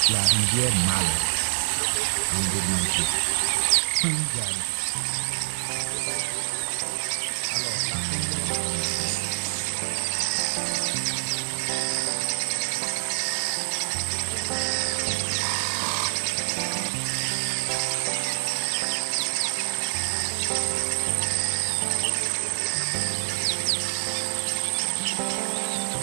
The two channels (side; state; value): left; silent; 61 dB below the other